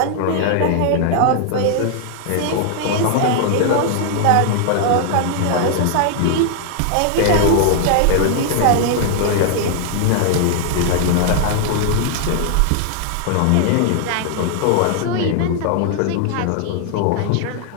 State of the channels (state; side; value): different; both; correlation 0.00